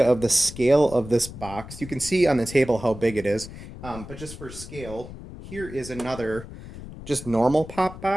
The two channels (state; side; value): noise; left; rumble, 13 dB below the sound